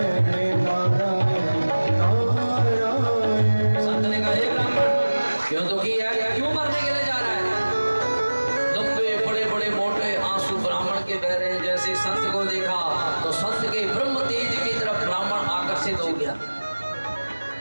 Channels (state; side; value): inverted; both; correlation -1.00